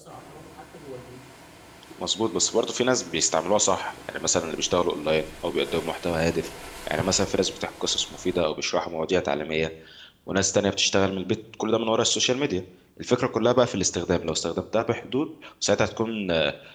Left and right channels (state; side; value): identical; both; correlation 1.00